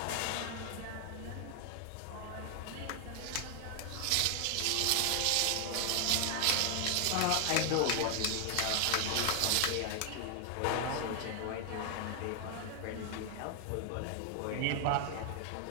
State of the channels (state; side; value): different; both; correlation 0.00